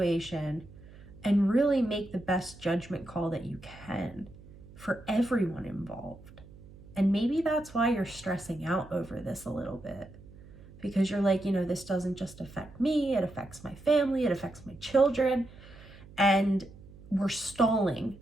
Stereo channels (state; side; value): noise; right; hum, 20 dB below the sound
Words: and really make the best judgment call that you can for everyone involved. And maybe that's why you're stressing out over this a little bit, because you're like, this doesn't just affect me, it affects my family, it affects my children, and we're stalling